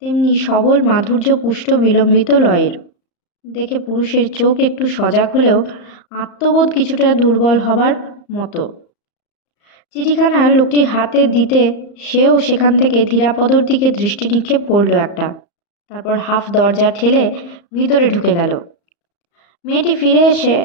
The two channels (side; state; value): right; late; 34 ms